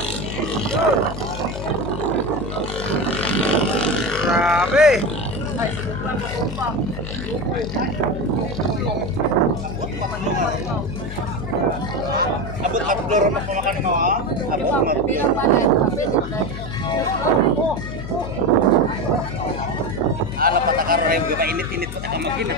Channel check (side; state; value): left; noise; hum, 9 dB below the sound